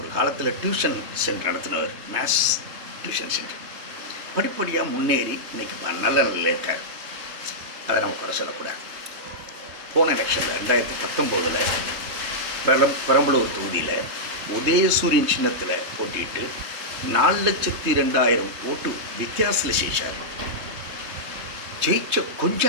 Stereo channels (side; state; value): left; late; 3.2 ms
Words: காலத்தில் டியூஷன் சென்டர் நடத்தினவர், மேத்ஸ் டியூஷன் சென்டர். படிப்படியாக முன்னேறி இன்றைக்கி நல்ல நிலையில் இருக்கார். அதை நம்ம கூட சொல்லக்கூடாது. போன எலெக்ஷனில் 2019 பெரம்பலூர் தொகுதியில் உதயசூரியன் சின்னத்தில் போட்டிட்டு 4,02,000 ஓட்டு வித்தியாசத்தில் ஜெயிச்சார். ஜெயிச்ச கொஞ்ச